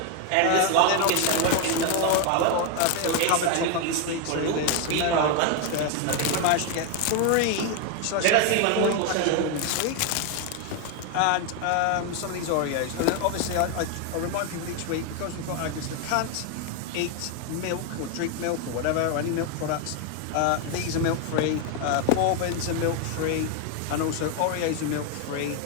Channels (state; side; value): different; both; correlation 0.01